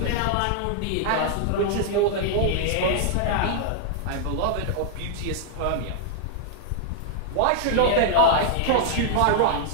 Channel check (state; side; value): different; both; correlation -0.01